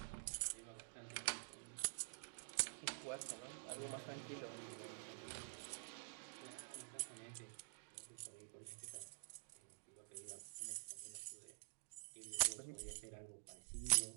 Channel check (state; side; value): silent; left; digital silence